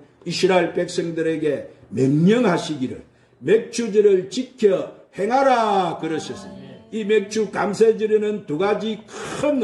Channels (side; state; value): both; identical; correlation 1.00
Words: 이스라엘 백성들에게 명령하시기를 맥주절을 지켜 행하라 그러셨습니다. 이 맥주 감사절에는 두 가지 큰